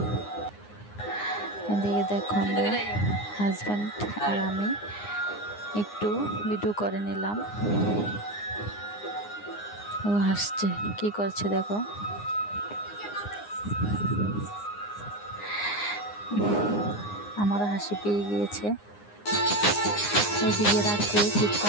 এদিকে দেখো আমরা হাজব্যান্ড আর আমি একটু ভিডিও করে নিলাম। ও হাসছে, কি করছে দেখো। আমারও হাসি পেয়ে গিয়েছে। এদিকে রাত্রে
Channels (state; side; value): late; right; 9.7 ms